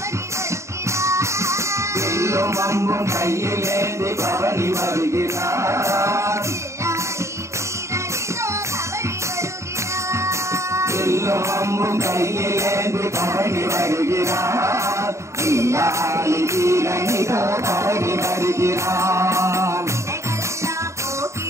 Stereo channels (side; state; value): left; late; 0.14 ms